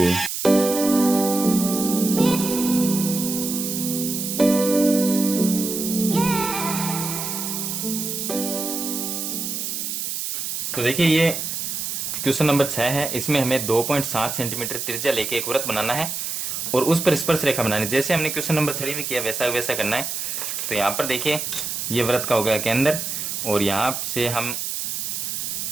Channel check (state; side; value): noise; right; hiss, 3 dB below the sound